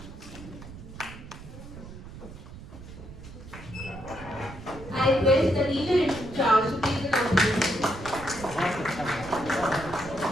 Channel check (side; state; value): right; noise; rumble, 14 dB below the sound